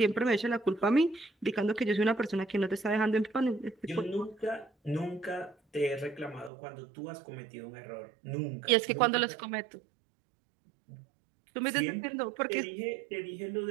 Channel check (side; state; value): left; drops out; at 6.5 s